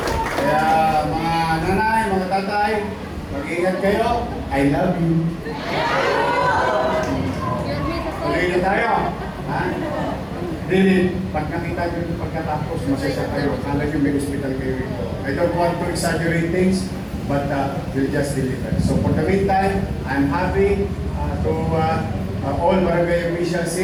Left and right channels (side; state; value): both; identical; correlation 1.00